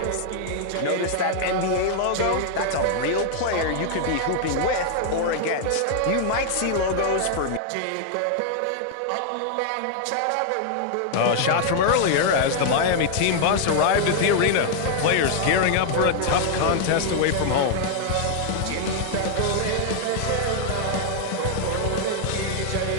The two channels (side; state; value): both; different; correlation -0.01